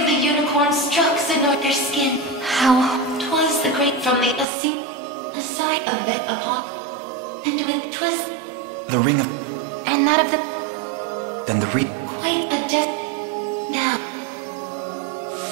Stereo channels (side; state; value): left; drops out; at 4.5 s